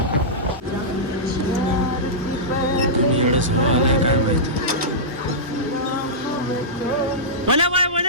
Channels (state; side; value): normal; both; correlation -0.15